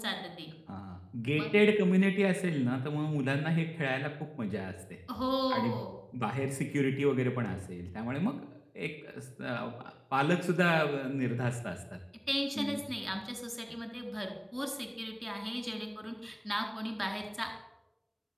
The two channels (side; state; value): both; identical; correlation 1.00